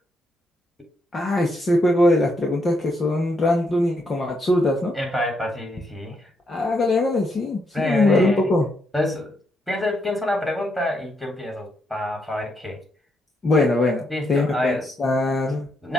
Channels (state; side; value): normal; both; correlation 0.78